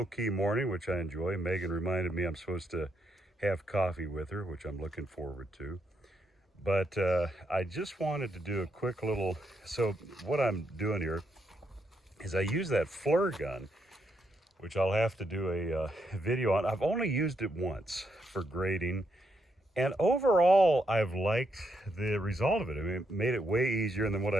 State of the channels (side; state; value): both; normal; correlation 0.79